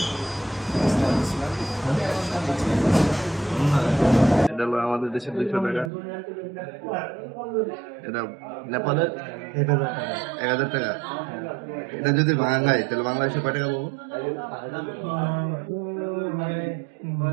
এটা হলো আমাদের দেশের 200 টাকা। এটা নেপালের 1000 টাকা। এটা যদি বাংলায়, তাহলে বাংলাদেশে কয় টাকা পাবো?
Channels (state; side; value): drops out; left; at 5.9 s